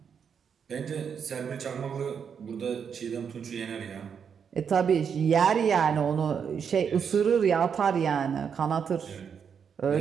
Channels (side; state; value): left; quieter; 7.1 dB